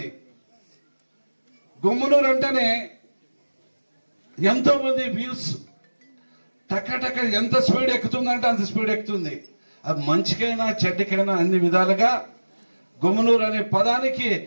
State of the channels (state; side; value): inverted; both; correlation -1.00